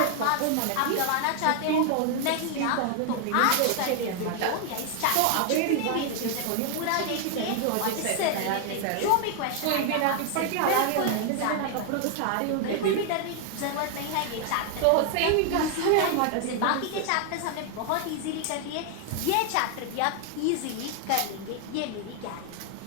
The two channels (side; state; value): both; different; correlation 0.00